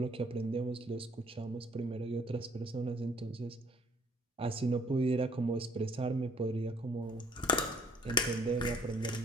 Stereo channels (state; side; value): normal; both; correlation 0.61